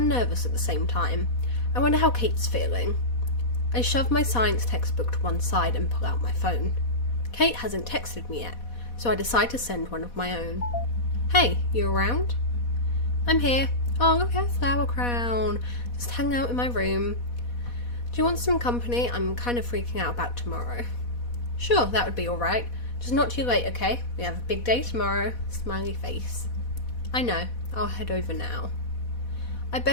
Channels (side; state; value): right; late; 4.1 ms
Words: nervous at the same time. I wonder how Kate's feeling. I shove my science textbook to one side and pull out my phone. Kate hasn't texted me yet, so I decide to send one of my own. Hey, you around? I'm here. Oh, look at a flower crown. Just hang out in my room. Do you want some company? I'm kind of freaking out about tomorrow. Sure, that would be alright. Just not too late, okay? We have a big day tomorrow. Smiley face. I know. I'll head over now. I